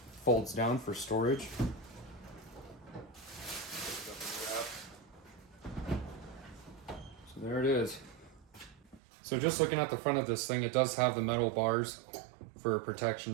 folds down for storage. So there it is. So just looking at the front of this thing, it does have the metal bars for protection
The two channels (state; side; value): drops out; left; at 9.0 s